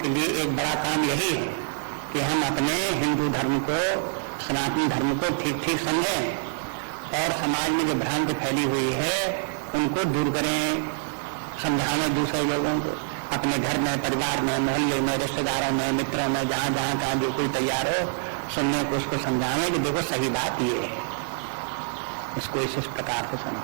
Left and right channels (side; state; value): left; silent; digital silence